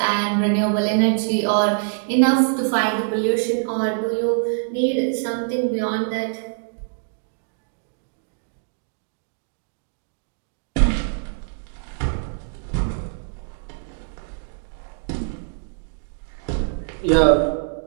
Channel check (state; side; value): silent; left; digital silence